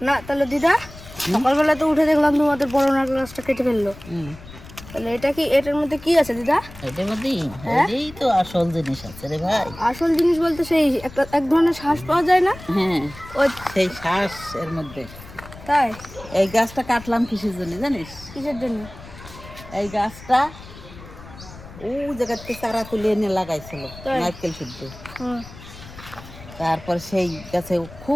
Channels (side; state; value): left; noise; rumble, 17 dB below the sound